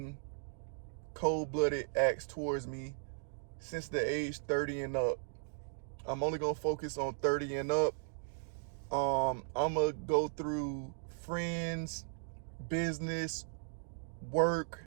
cold-blooded acts towards me since the age 30 and up. I'm only gonna focus on 30 and up. I'm gonna go through friends, business, work,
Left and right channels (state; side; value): silent; left; digital silence